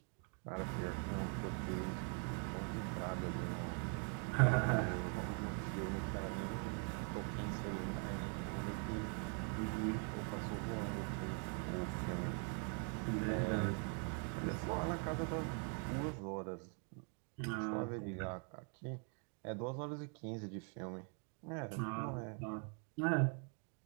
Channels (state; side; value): quieter; left; 37.4 dB